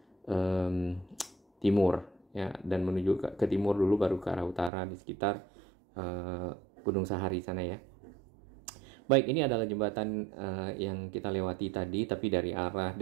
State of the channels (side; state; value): left; drops out; at 4.7 s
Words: timur ya, dan menuju ke timur dulu baru ke arah utara di sekitar Gunung Sahari sana ya. Baik, ini adalah jembatan yang kita lewati tadi, tapi dari arah